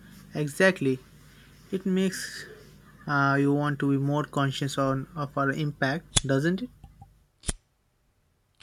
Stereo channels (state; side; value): identical; both; correlation 1.00